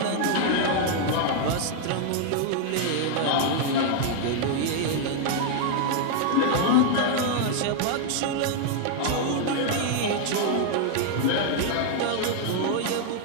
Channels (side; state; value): both; different; correlation 0.00